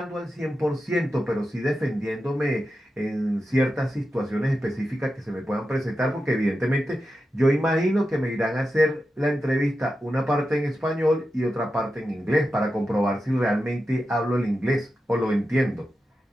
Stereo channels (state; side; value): normal; both; correlation 0.90